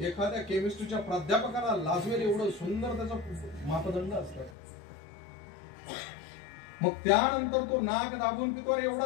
एखाद्या केमिस्ट्रीच्या प्राध्यापकाला लाजवेल एवढं सुंदर त्याचा मापदंड असतात. मग त्यानंतर तो नाक दाबून पितो. अरे एवढा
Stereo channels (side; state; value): right; drops out; at 4.5 s